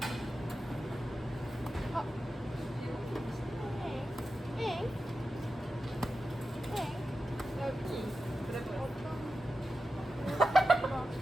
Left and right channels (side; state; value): both; normal; correlation 0.91